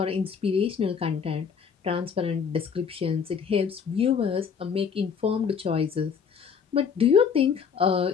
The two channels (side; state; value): right; quieter; 6.6 dB